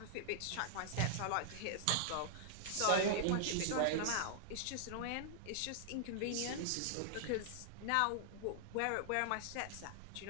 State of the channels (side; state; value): both; different; correlation -0.01